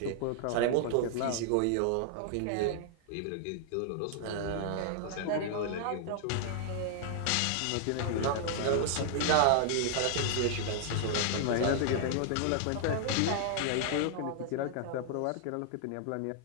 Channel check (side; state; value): both; different; correlation -0.01